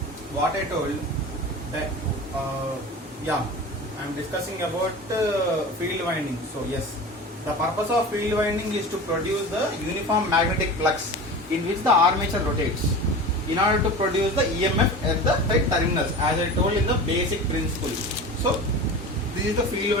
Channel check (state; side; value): normal; both; correlation 0.33